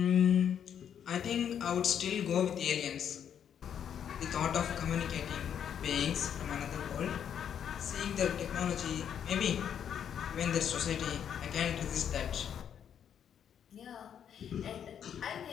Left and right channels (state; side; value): quieter; right; 8.8 dB